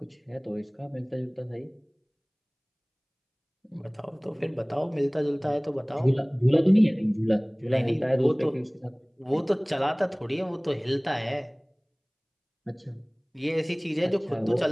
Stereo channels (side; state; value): both; identical; correlation 1.00